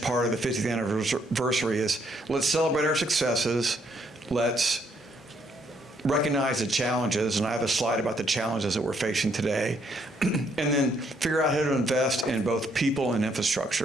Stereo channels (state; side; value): normal; both; correlation 0.71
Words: of the 50th anniversary is let's celebrate our successes, let's recognize the challenges, and I have a slide about the challenges that we're facing today, and then figure out how to invest in both people and